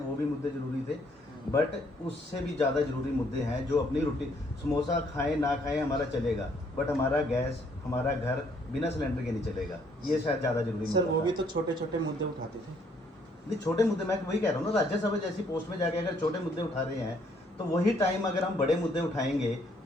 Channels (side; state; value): both; normal; correlation 0.67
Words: वो भी मुद्दे ज़रूरी थे। बट उससे भी ज़्यादा ज़रूरी मुद्दे हैं जो अपनी रूटीन, समोसा खाएं ना खाएं हमारा चलेगा, बट हमारा गैस, हमारा घर बिना सिलेंडर के नहीं चलेगा। ये शायद ज़्यादा ज़रूरी सर मुद्दा वो था। भी तो छोटे छोटे मुद्दे उठाते थे। नहीं, छोटे मुद्दे मैं वही कह रहा हूँ ना, राज्यसभा जैसी पोस्ट में जाके अगर छोटे मुद्दे उठा रहे हैं, तो वही टाइम अगर हम बड़े मुद्दे उठाएंगे